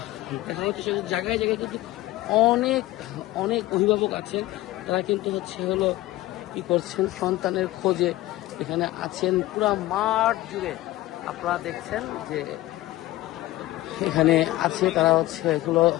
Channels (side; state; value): right; quieter; 17.0 dB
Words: দেখা হচ্ছে জায়গায় জায়গায় কিন্তু অনেক অনেক অভিভাবক আছেন, তারা কিন্তু হলো কি করছেন, সন্তানের খোঁজে এখানে আছেন। পুরা মাঠ জুড়ে আপনারা দেখছেন যে এখানে আছে, তারা এগুলো